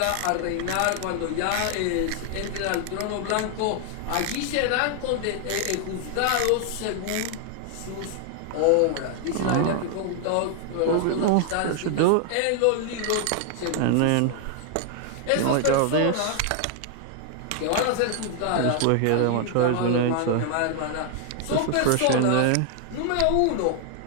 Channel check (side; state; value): both; different; correlation 0.00